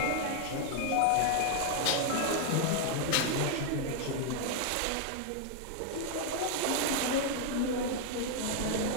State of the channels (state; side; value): different; both; correlation 0.00